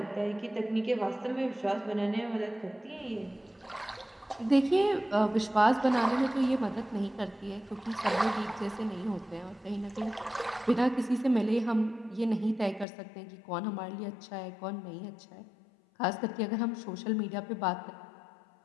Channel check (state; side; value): drops out; right; at 12.9 s